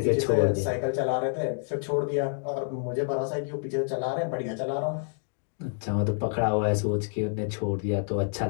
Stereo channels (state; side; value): silent; right; digital silence